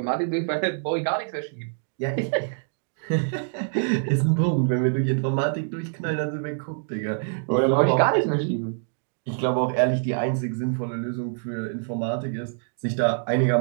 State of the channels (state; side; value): silent; left; digital silence